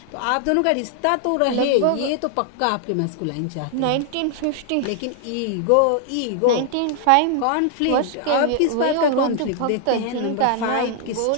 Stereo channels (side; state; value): both; different; correlation 0.00